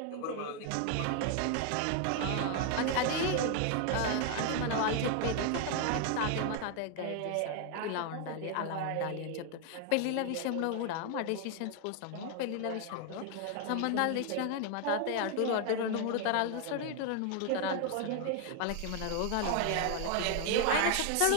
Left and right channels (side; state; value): both; different; correlation 0.00